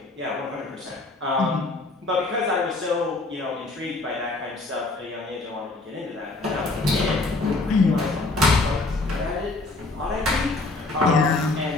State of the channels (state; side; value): quieter; right; 3.2 dB